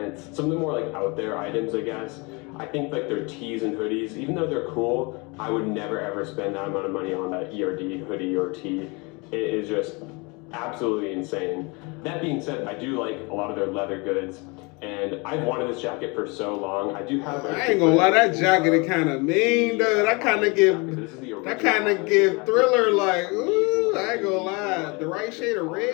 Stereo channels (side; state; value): right; quieter; 28.7 dB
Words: some of the more like out there items, I guess. I think like their tees and hoodies, even though they're cool, I would never ever spend that amount of money on that ERD hoodie or tee. It is just absolutely insane. That being said, I do like a lot of their leather goods, and I've wanted this jacket for so long. I do have. I ain't gonna lie, that jacket is kind of mean, though. That kind of give Thriller like, ooh. I ain't gonna lie, the right shade of